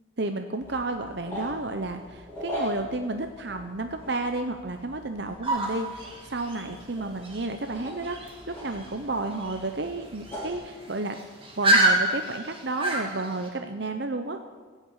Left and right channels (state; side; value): normal; both; correlation -0.05